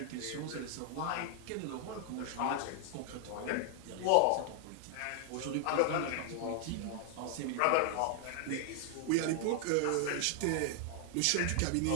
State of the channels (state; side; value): different; both; correlation 0.00